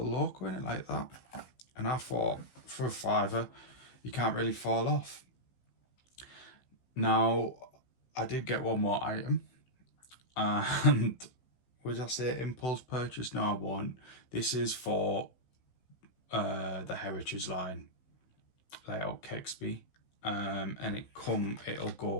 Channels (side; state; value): right; late; 15 ms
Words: Locco in it like that. And I thought, for a £5, you can't really fall off. Now, I did get one more item, and would I say impulse purchase? No, I won't. This is for the Heritage Line layout Kexby, and it'll